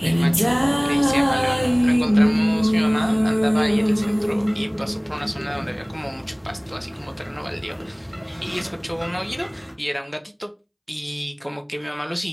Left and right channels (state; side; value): identical; both; correlation 1.00